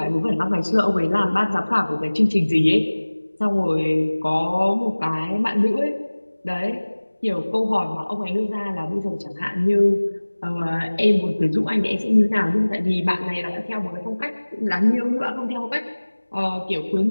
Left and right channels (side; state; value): both; inverted; correlation -1.00